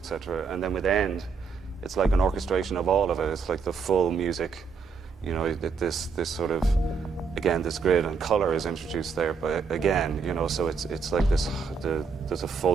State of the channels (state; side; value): quieter; left; 5.4 dB